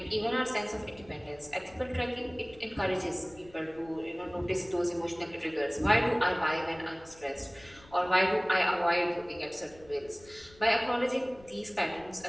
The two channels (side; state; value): left; noise; rumble, 24 dB below the sound